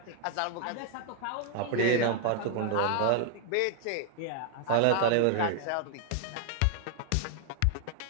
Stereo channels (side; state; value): both; different; correlation 0.00